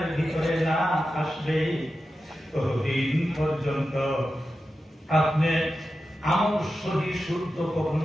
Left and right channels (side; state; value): both; normal; correlation 0.91